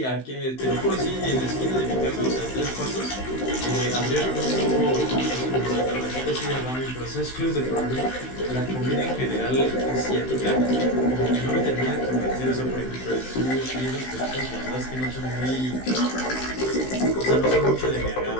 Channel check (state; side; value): late; right; 16 ms